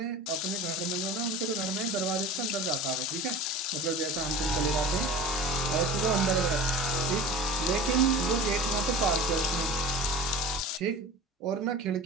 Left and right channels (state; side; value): normal; both; correlation 0.35